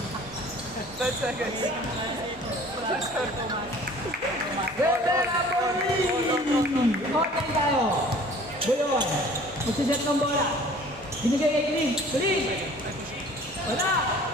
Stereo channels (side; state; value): both; normal; correlation 0.49